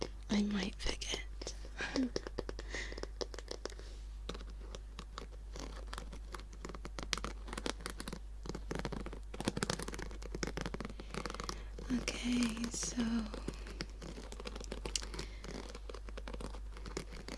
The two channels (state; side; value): identical; both; correlation 1.00